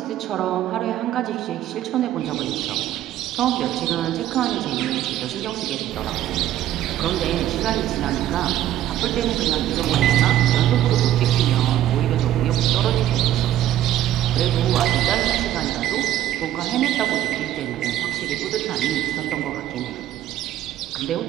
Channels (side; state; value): left; quieter; 12.6 dB